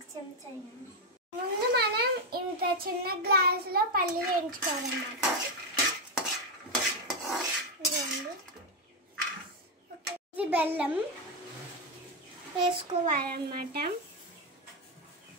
చెంచా. ముందు మనం ఇంత చిన్న గ్లాసులో పల్లీలు వేయించుకోవాలన్నమాట. ఇది బెల్లం వేసుకోవాలన్నమాట.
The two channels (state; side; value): normal; both; correlation 0.06